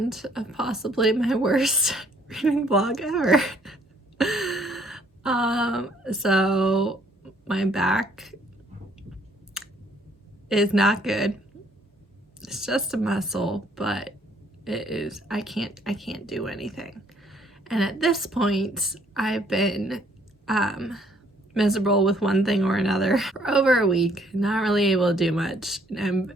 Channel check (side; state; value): both; normal; correlation 0.65